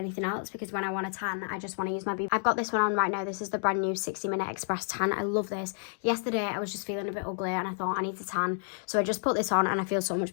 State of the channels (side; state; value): right; silent; digital silence